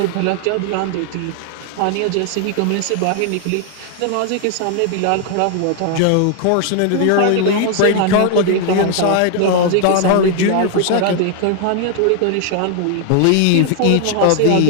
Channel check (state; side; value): different; both; correlation 0.00